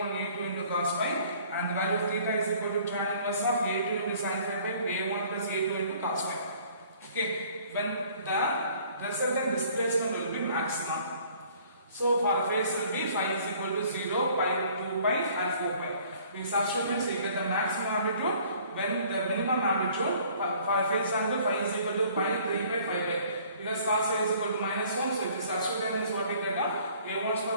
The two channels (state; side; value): inverted; both; correlation -0.56